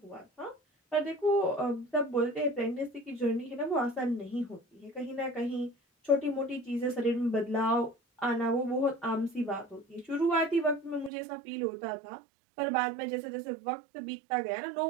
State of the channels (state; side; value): drops out; left; at 11.1 s